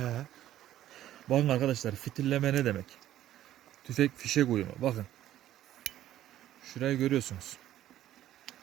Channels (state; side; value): quieter; left; 12.9 dB